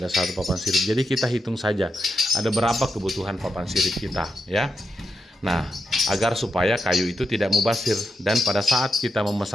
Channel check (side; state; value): both; normal; correlation 0.85